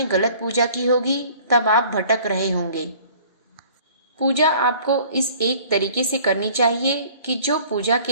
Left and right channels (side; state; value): both; inverted; correlation -0.51